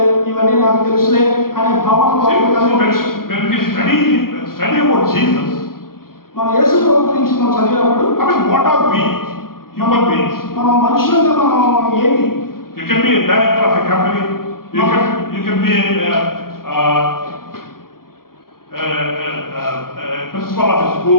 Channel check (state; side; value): late; right; 0.92 ms